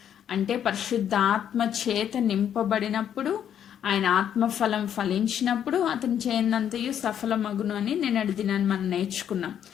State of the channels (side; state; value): right; quieter; 9.4 dB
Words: అంటే పరిశుద్ధాత్మ చేత నింపబడినప్పుడు, ఆయన ఆత్మఫలం ఫలించినప్పుడు అతను చేయనంతయు సఫలమగును అని నిన్నటి దినాన్ని మనం నేర్చుకున్నాం.